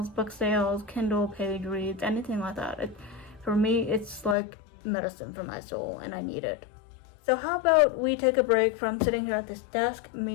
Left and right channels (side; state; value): right; drops out; at 4.4 s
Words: book sales, Kindle page reads, anything like that. For me, it's like medicine for my soul, and I need it. So how about we take a break from sitting here at this desk,